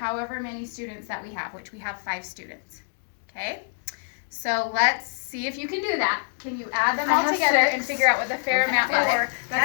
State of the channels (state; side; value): silent; right; digital silence